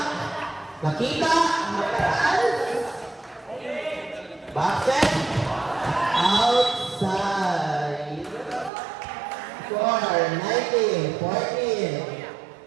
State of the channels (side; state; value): left; drops out; at 8.7 s